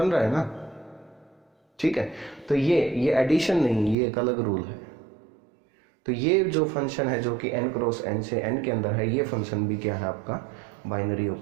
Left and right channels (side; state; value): left; drops out; at 4.0 s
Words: रहा है ना। ठीक है, तो ये एडिशन नहीं, ये एक अलग रूल है। तो ये जो फंक्शन है जो कि n क्रॉस n से n के अंदर है, ये फंक्शन भी क्या है आपका, बाइनरी